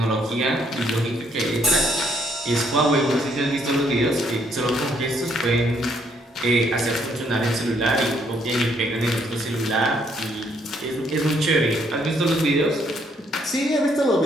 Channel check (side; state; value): both; normal; correlation 0.69